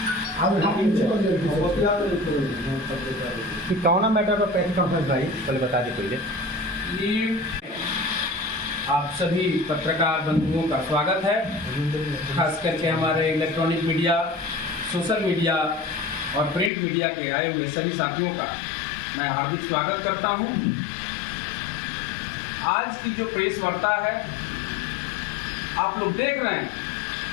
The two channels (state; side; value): drops out; right; at 16.7 s